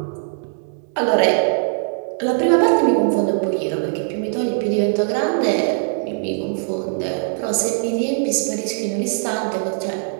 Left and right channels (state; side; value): silent; left; digital silence